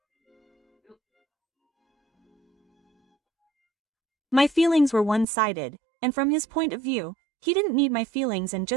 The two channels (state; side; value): drops out; left; at 5.2 s